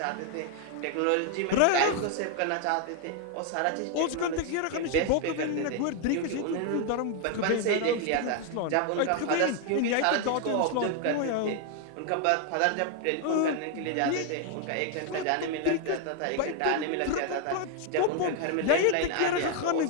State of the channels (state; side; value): different; both; correlation 0.00